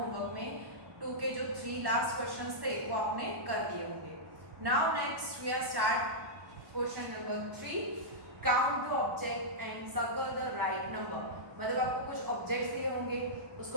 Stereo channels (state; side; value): late; left; 1.1 ms